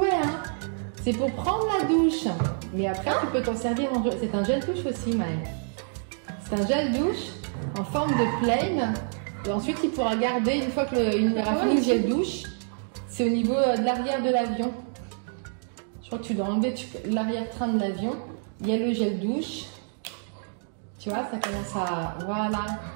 hein. C'est pour prendre la douche. Mais après, tu peux t'en servir en jouet. C'est un gel douche aussi, Maëlle. C'est un gel douche en forme de plain. Et ensuite, il pourra garder, une fois qu'il aura fini le gel douche, c'est au niveau de l'arrière de l'avion. Je crois que tu dois enlever l'arrière-train de l'avion. Il y a le gel douche. Tu vois, ça commence à... Voilà,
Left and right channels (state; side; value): silent; left; digital silence